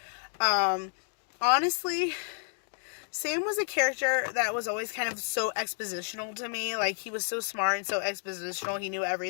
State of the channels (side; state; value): right; silent; 57 dB below the other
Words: Honestly, Sam was a character that was always kind of so expositional to me. Like, he was so smart and so expositional. He knew